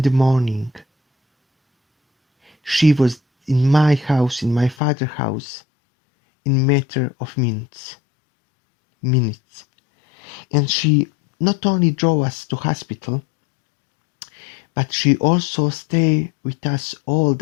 the morning. She was in my house, in my father's house, in a matter of minutes. And she not only drove us to hospital, but she also stayed with us all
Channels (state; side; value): drops out; right; at 4.8 s